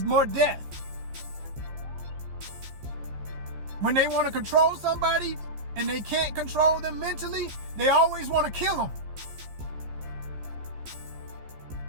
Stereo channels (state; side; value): late; left; 14 ms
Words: more death. When they want to control somebody and they can't control them mentally, they always want to kill them.